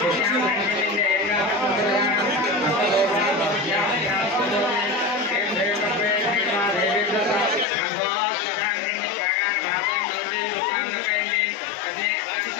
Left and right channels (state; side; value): drops out; right; at 7.7 s